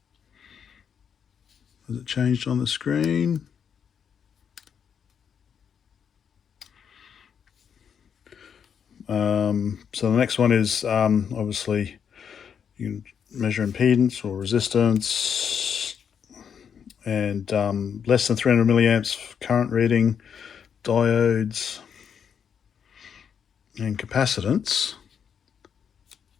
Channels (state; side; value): quieter; right; 7.5 dB